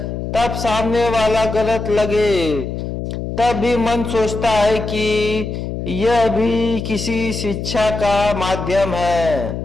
तब सामने वाला गलत लगे, तब भी मन सोचता है कि यह भी किसी शिक्षा का माध्यम है।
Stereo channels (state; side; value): noise; left; hum, 5 dB below the sound